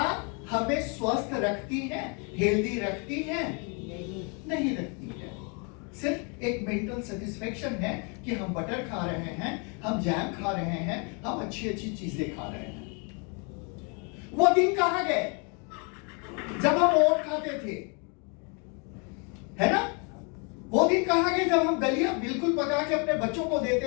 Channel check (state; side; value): quieter; right; 35.4 dB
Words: हमें स्वस्थ रखती हैं, हेल्दी रखती हैं? नहीं रखती है। सिर्फ एक मेंटल सेटिस्फेक्शन है कि हम बटर खा रहे हैं, हम जैम खा रहे हैं, हम अच्छी अच्छी चीजें खा रहे हैं। वो दिन कहां गए जब हम ओट खाते थे, है ना? वो दिन कहां गए जब हम दलिया बिल्कुल पका के अपने बच्चों को